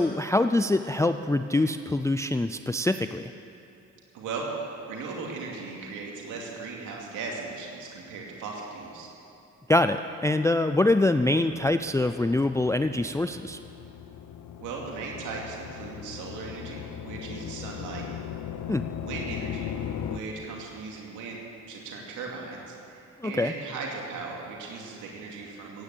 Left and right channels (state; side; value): normal; both; correlation 0.72